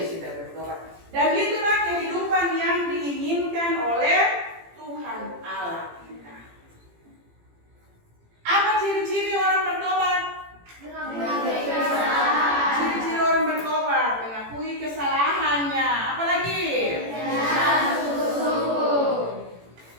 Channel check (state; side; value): late; left; 18 ms